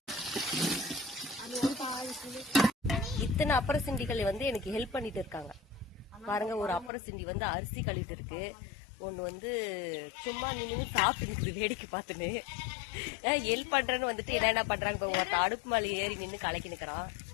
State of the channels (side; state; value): right; drops out; at 6.9 s